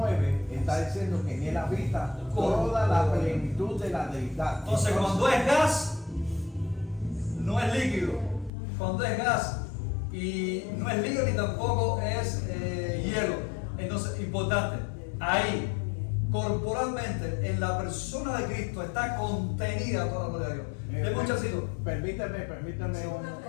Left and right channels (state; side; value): drops out; right; at 8.5 s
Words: está diciendo que en él habita toda la plenitud de la deidad. Entonces cuando es gas, no es líquido. Cuando es gas y no es líquido ni tampoco es hielo. Entonces, importante, ahí, corporalmente, en la persona de Cristo está contenida toda la gloria de Dios. Deme un chancito. Permítame